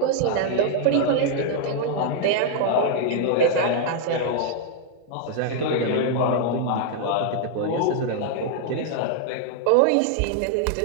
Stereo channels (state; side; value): different; both; correlation 0.00